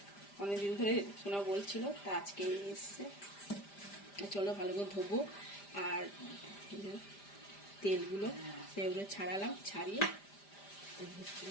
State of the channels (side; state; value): right; late; 5.0 ms